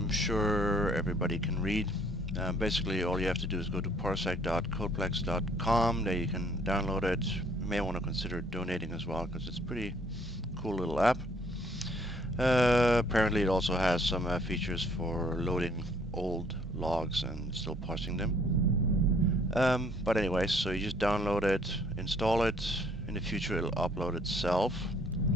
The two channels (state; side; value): normal; both; correlation 0.61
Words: sure everybody can read. Basically, all you have to do is go to parsec.codeplex.com. There you can download it. You may want to consider donating as well, because it's a pretty cool little app. Apparently, it also has some features for loading old logs and still parsing them. But anyway, so you just download it, install it. In the future, it'll upload itself,